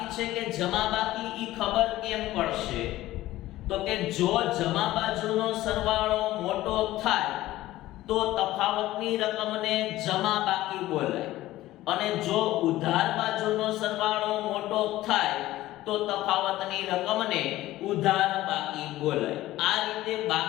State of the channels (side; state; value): right; quieter; 16.0 dB